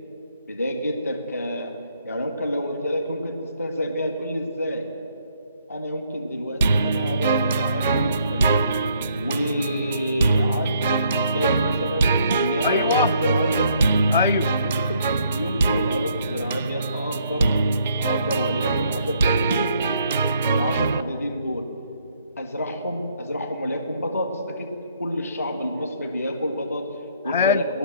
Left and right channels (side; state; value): both; inverted; correlation -0.69